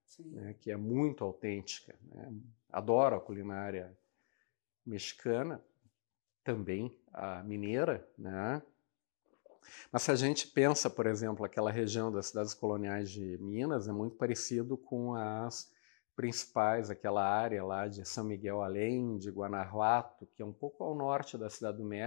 né? Que é muito autêntica, né? Adoro a culinária mexicana, também a mineira, né? Mas se a gente pensa, por exemplo, aquela região das cidades coloniais de Minas, é muito parecido com as principais, aquela área lá de São Miguel Allende, Guanajuato, que é um pouco ao norte da Cidade do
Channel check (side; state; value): right; silent; digital silence